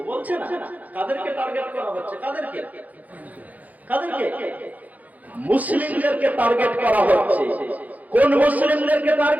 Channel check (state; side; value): late; left; 0.078 ms